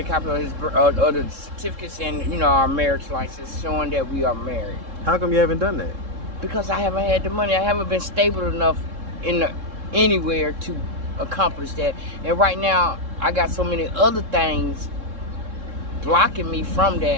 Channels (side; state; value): left; late; 3.7 ms